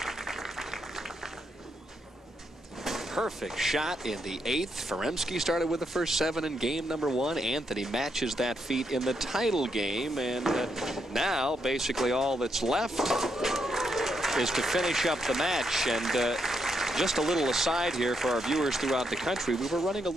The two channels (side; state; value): both; normal; correlation 0.79